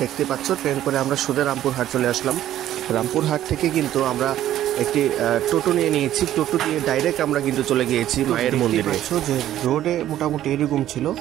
দেখতে পাচ্ছ, ট্রেন করে আমরা সোজা রামপুরহাট চলে আসলাম। রামপুরহাট থেকে কিন্তু আমরা একটি টোটো নিয়েছি। টোটো দিয়ে ডাইরেক্ট আমরা কিন্তু চলে গিয়েছি মায়ের মন্দিরে। যে রোডে মোটামুটি এরকম ছিল,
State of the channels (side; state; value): left; quieter; 12.4 dB